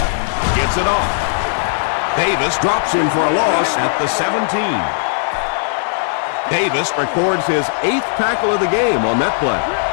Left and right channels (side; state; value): right; silent; digital silence